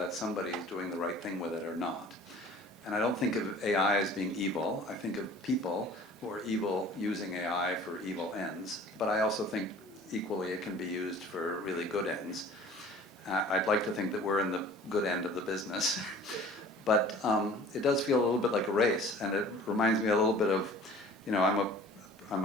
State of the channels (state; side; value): noise; right; hiss, 28 dB below the sound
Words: somebody is doing the right thing with it or not. And I don't think of AI as being evil. I think of people who are evil using AI for evil ends, but I also think equally it can be used for really good ends. I'd like to think that we're in the good end of the business, but it does feel a little bit like a race, and it reminds me a little bit of, you know, I'm